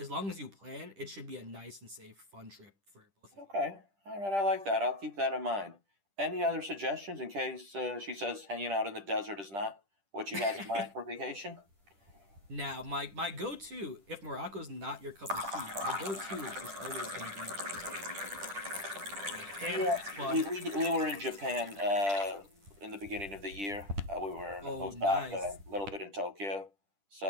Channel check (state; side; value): late; left; 10 ms